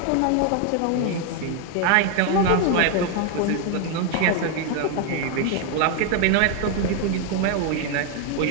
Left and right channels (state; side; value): different; both; correlation 0.01